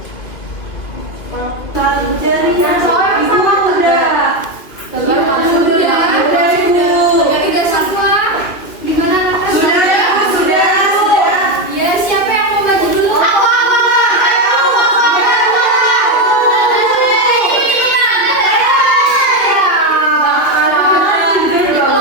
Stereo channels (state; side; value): late; right; 2.6 ms